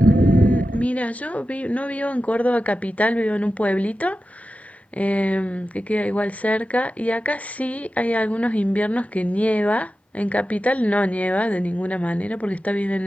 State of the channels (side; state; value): both; normal; correlation 0.93